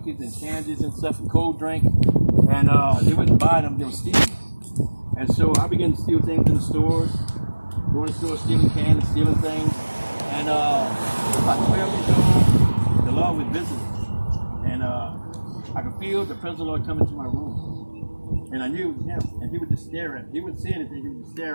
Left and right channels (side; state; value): both; inverted; correlation -1.00